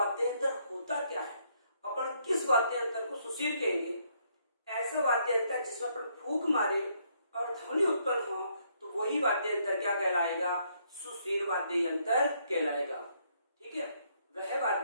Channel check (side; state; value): both; inverted; correlation -0.71